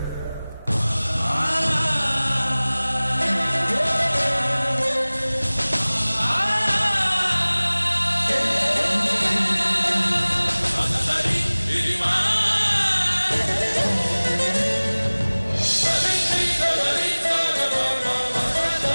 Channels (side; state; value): both; inverted; correlation -1.00